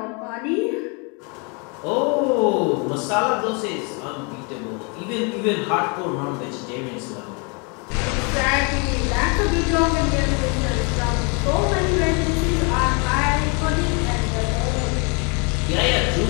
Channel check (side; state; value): right; quieter; 33.7 dB